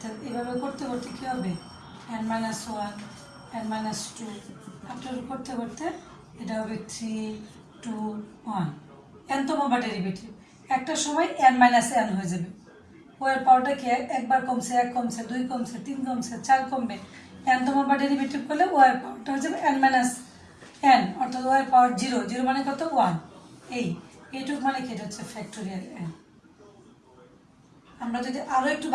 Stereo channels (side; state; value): both; identical; correlation 1.00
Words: এভাবে করতে করতে কি হবে n minus 1 n minus 2 after করতে করতে এটা হবে 3 2 1, n তম বার ডেরিভেটিভ, একটা সময় n মাইনাস n হয়ে যাবে, ওয়ের পাওয়ারটা কি একবার কমছে 1 কমছে 2 কমছে 3 কমছে 4 কমবে, n তম বার ডেরিভেটিভ করলে ওয়ের পাওয়ারটা হয়ে যাবে n মাইনাস n, অর্থাৎ ওয়ের পাওয়ার 0, 0 মানে কত 1, এইটুক মানে কি এটা হচ্ছে ফ্যাক্টোরিয়াল n। আমরা যদি আরো একটু